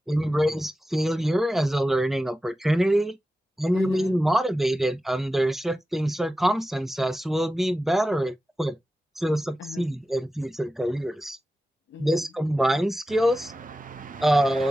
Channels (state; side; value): normal; both; correlation 0.94